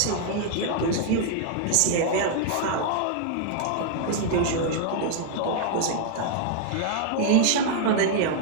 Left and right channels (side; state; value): both; different; correlation 0.00